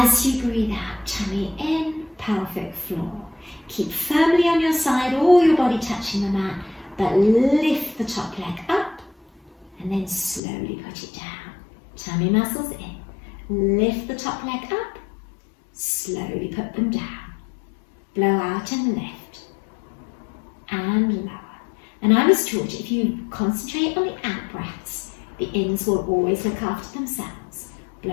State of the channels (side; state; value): right; drops out; at 10.4 s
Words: you breathe out, tummy in, pelvic floor. Keep firmly on your side, all your body touching the mat, but lift the the top leg up and then slowly put it down. Tummy muscles in. Lift the top leg up, slowly put them down. Blow out and lift and lower. And I was taught if you concentrate on the out breaths, the ins will always look after themselves. Blow